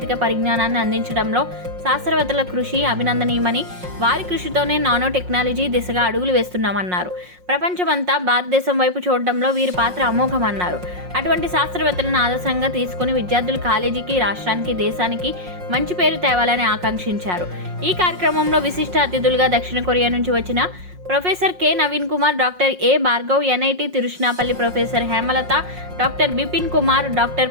పరిజ్ఞానాన్ని అందించడంలో శాస్త్రవేత్తల కృషి అభినందనీయమని, వారి కృషితోనే నానో టెక్నాలజీ దిశగా అడుగులు వేస్తున్నామన్నారు. ప్రపంచమంతా భారతదేశం వైపు చూడడంలో వీరి పాత్ర అమోఘమన్నారు. అటువంటి శాస్త్రవేత్తలను ఆదర్శంగా తీసుకుని విద్యార్థులు కాలేజీకి, రాష్ట్రానికి, దేశానికి మంచి పేరు తేవాలని ఆకాంక్షించారు. ఈ కార్యక్రమంలో విశిష్ట అతిథులుగా దక్షిణ కొరియా నుంచి వచ్చిన professor K Naveen Kumar, doctor A Bhargav, NIT Tiruchirappalli professor Hemalatha, doctor Bipin Kumar, doctor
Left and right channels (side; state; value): left; late; 5.5 ms